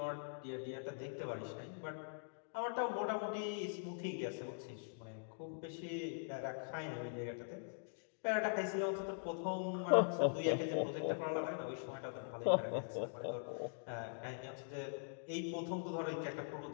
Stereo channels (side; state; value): right; silent; digital silence